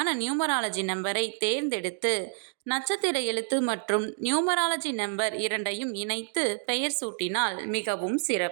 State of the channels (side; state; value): left; silent; digital silence